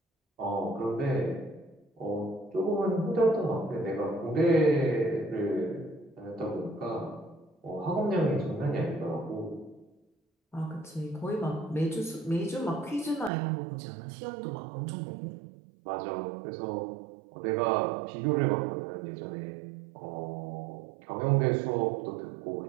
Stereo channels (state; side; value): drops out; left; at 13.3 s